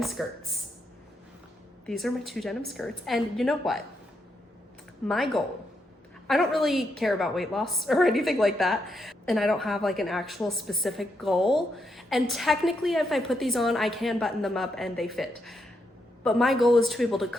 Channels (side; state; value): both; normal; correlation 0.80